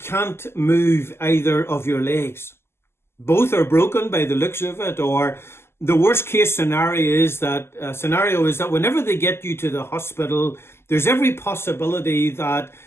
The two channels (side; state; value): right; late; 0.12 ms